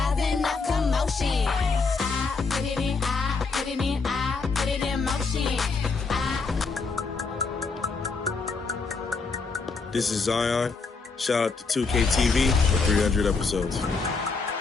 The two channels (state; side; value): quieter; right; 4.4 dB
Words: a commotion. I put it in, I put it in, I put it in motion. This is Zion. Shout out to 2K TV for 300 episodes.